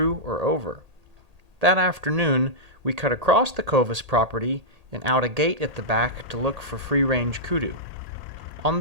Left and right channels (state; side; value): late; left; 1.8 ms